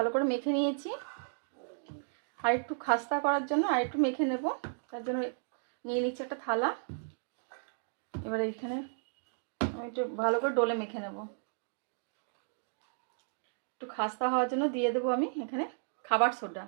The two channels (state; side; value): silent; left; digital silence